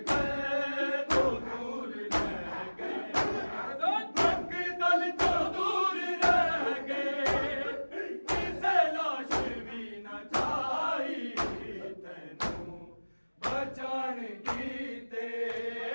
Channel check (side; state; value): both; inverted; correlation -1.00